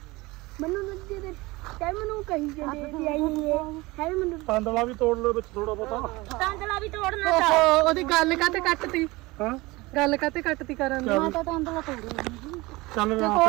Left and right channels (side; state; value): left; quieter; 22.0 dB